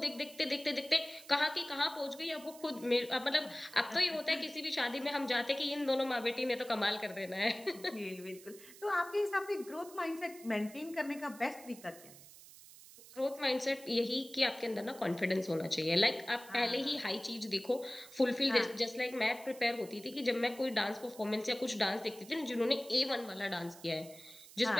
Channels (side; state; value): right; noise; hiss, 19 dB below the sound